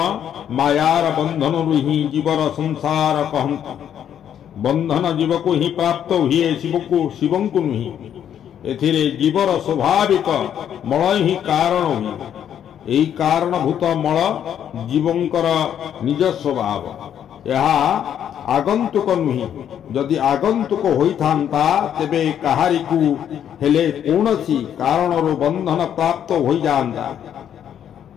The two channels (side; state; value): right; quieter; 9.5 dB